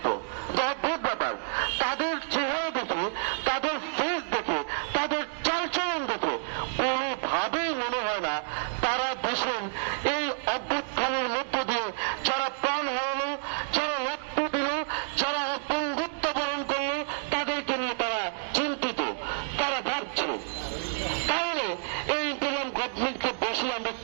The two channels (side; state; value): left; silent; digital silence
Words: অদ্ভুত ব্যাপার, তাদের চেহারা দেখে, তাদের ফেস দেখে, তাদের চালচলন দেখে কোনোভাবেই মনে হয় না তারা দেশের এই অভ্যুত্থানের মধ্য দিয়ে যারা প্রাণ হারালো, যারা রক্ত দিল, যারা বন্ধুত্ব বরণ করলো, তাদেরকে নিয়ে তারা চিন্তিত, তারা ভাবছে। তাহলে এই ইন্টারিম গভর্নমেন্টকে বসে আমরা